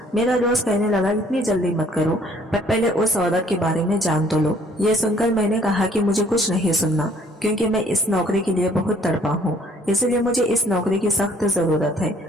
मेरा दोस्त कहने लगा, इतनी जल्दी मत करो, पर पहले उस औरत के बारे में जान तो लो। ये सुनकर मैंने कहा कि मुझे कुछ नहीं सुनना, क्योंकि मैं इस नौकरी के लिए बहुत तड़पा हूँ, इसलिए मुझे इस नौकरी की सख्त जरूरत है।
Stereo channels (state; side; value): normal; both; correlation 0.60